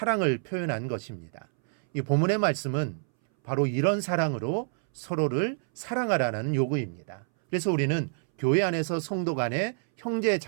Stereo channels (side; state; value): left; silent; 60 dB below the other